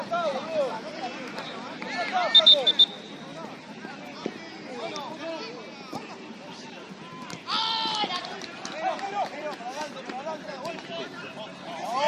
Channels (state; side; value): identical; both; correlation 1.00